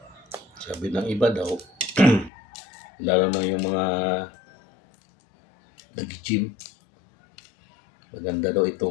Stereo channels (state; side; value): drops out; right; at 2.3 s